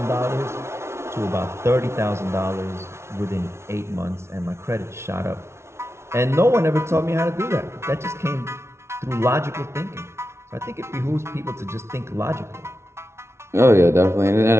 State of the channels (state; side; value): late; left; 0.13 ms